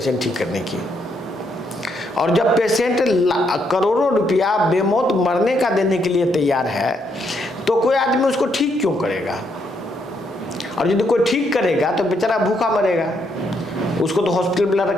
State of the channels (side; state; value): both; normal; correlation 0.75